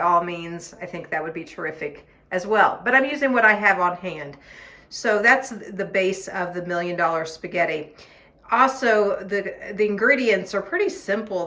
means, I think that would be terrific as well. But I'm using what I have on hand. So that's the base of the $1 million spaghetti. Also, the ingredients are pretty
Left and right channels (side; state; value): both; identical; correlation 1.00